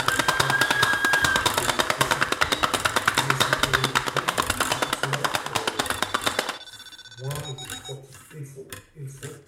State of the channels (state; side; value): identical; both; correlation 1.00